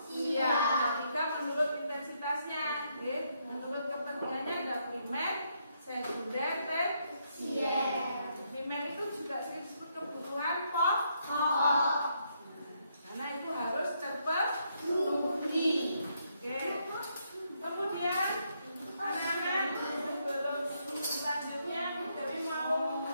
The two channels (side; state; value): both; inverted; correlation -0.76